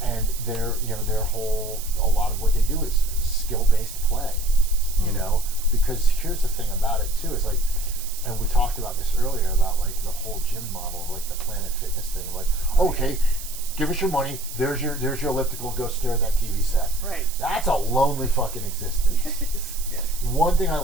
And a lot of what they do is skill-based play, you know, because here's the thing about it too, is like, and we talked about this earlier about like the whole gym model of like the Planet Fitness thing, like, okay, give us your money, there's your elliptical, go stare at that TV set. Right. That's a lonely fucking existence. Yes. Yes. One thing I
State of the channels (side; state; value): right; noise; hiss, 11 dB below the sound